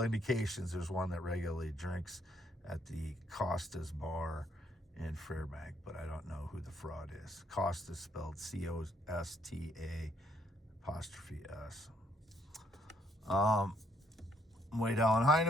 there's one that regularly drinks at the Costa's bar in Fairbank, but I don't know who the fraud is. Costa spelled COSTA''S. Wade Allen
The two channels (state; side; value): normal; both; correlation 0.71